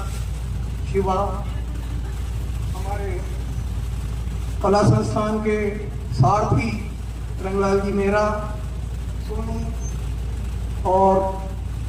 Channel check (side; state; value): both; identical; correlation 1.00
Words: शिवा हमारे कला संस्थान के सारथी रंगलाल जी मेहरा, सोनू और